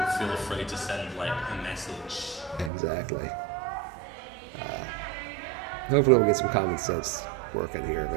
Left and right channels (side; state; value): left; drops out; at 2.7 s